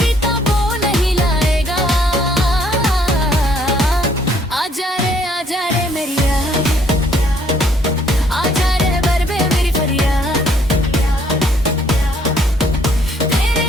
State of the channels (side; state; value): both; normal; correlation 0.65